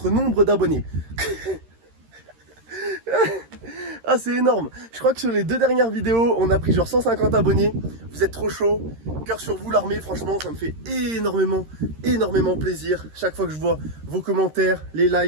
nombre d'abonnés. Ah c'est énorme. Je crois que sur les 2 dernières vidéos, on a pris genre 150 abonnés. Vous êtes trop chaud. Cœur sur vous l'armée, franchement ça me fait énormément plaisir. Chaque fois que je vois vos commentaires, les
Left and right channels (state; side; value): late; left; 13 ms